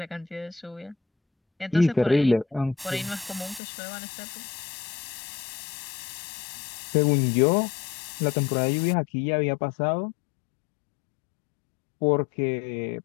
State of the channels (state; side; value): drops out; right; at 3.6 s